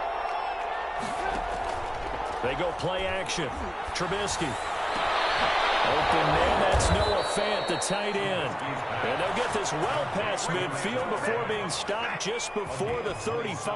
They go play action. Trubisky. Open man, that's Noah Fant, the tight end. And they'll get this well past midfield before being stopped just before the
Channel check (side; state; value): both; identical; correlation 1.00